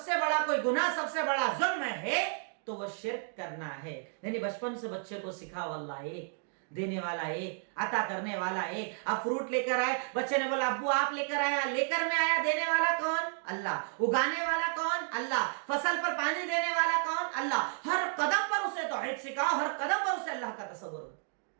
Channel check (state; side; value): silent; left; 56 dB below the other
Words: سے بڑا کوئی گناہ، سب سے بڑا ظلم ہے تو وہ شرک کرنا ہے۔ یعنی بچپن سے بچے کو سکھاؤ اللہ ایک، دینے والا ایک، عطا کرنے والا ایک۔ اب فروٹ لے کر آئے، بچے نے بولا ابو آپ لے کر آیا، لے کر میں آیا، دینے والا کون؟ اللہ۔ اگانے والا کون؟ اللہ۔ فصل پر پانی دینے والا کون؟ اللہ۔ ہر قدم پر اسے توحید سکھاؤ، ہر قدم پر اسے اللہ کا تصور ہو۔